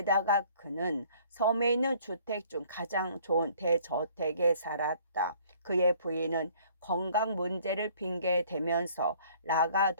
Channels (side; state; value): both; inverted; correlation -0.57